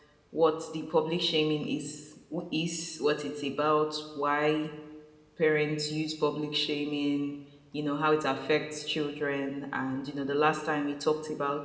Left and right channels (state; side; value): identical; both; correlation 1.00